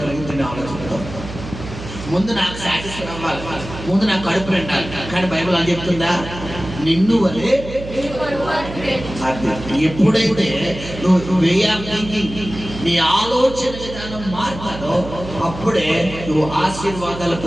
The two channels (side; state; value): right; noise; hum, 11 dB below the sound